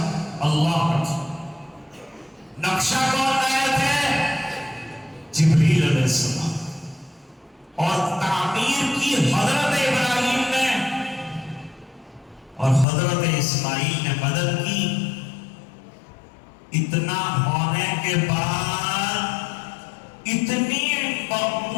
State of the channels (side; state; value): right; drops out; at 12.9 s